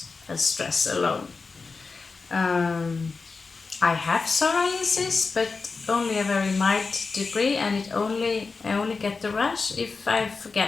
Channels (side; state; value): right; quieter; 4.4 dB